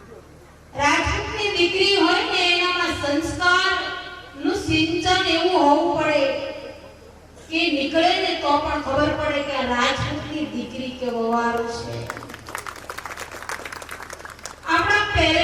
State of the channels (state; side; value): identical; both; correlation 1.00